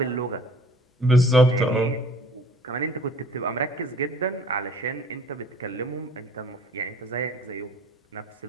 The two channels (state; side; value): normal; both; correlation 0.52